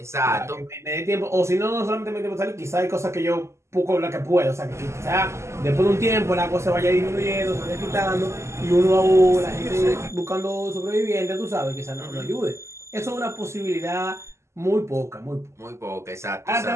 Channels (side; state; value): left; late; 0.13 ms